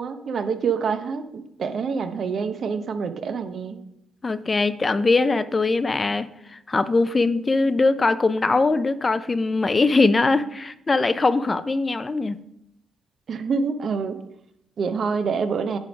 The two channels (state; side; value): normal; both; correlation 0.89